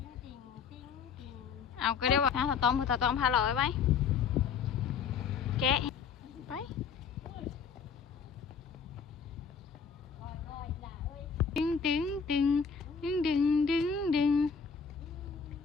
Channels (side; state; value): right; quieter; 6.2 dB